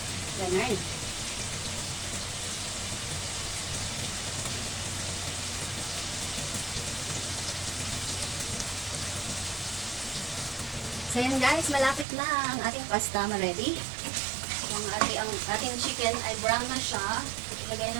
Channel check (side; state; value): left; drops out; at 12.1 s